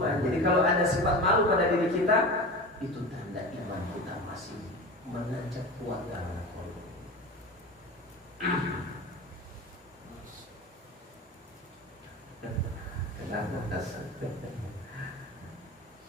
Jadi kalau ada sifat malu pada diri kita, itu tanda iman kita masih menancap kuat dalam kolom. Kenapa dasar?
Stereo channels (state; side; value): normal; both; correlation 0.30